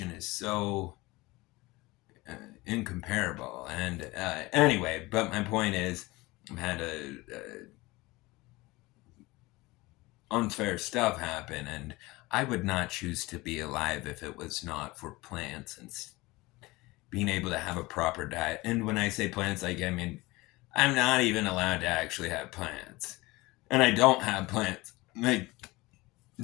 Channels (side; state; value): right; quieter; 21.5 dB